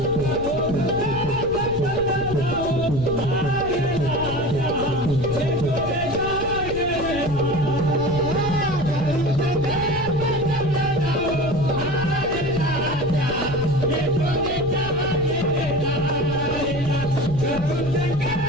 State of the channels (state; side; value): noise; left; rumble, 10 dB below the sound